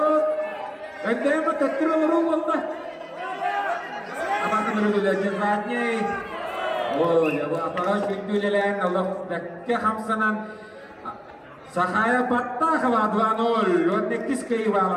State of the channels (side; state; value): both; identical; correlation 1.00